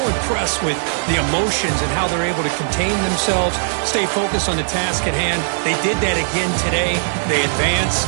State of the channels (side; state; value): left; silent; 67 dB below the other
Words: with the emotions and how they're able to contain themselves, stay focused on the task at hand. They did that again today. They advance.